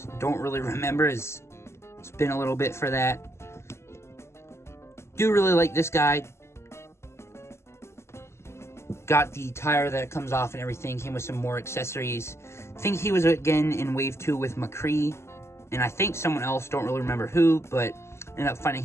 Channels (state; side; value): late; right; 0.13 ms